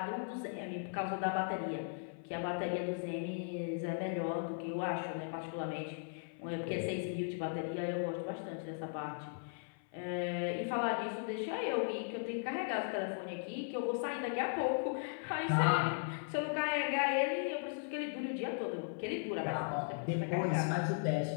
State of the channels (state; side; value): silent; right; 53 dB below the other